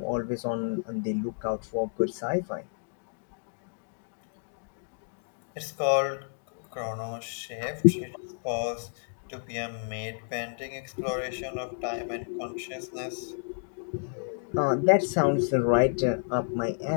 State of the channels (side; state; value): right; silent; digital silence